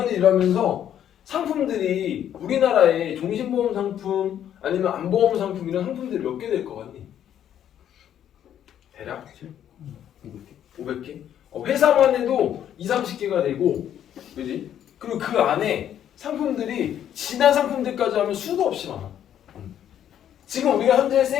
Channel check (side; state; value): right; quieter; 10.3 dB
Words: 일하면서 상품들이 우리나라에 종신보험 상품 아니면 안보험 상품 이런 상품들이 몇 개 될 것 같니? 대략 500개? 회사만 해도 20-30개가 되고 그지? 그리고 그 안에 상품들이 지난 상품들까지 하면 수도 없이 많아. 지금 우리가 현재